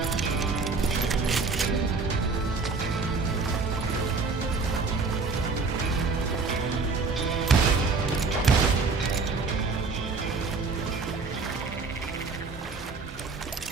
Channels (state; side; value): quieter; left; 4.2 dB